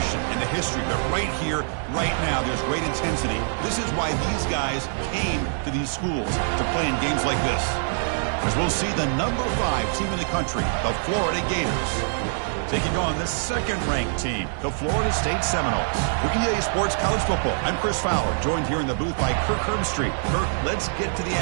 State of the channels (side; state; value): left; silent; digital silence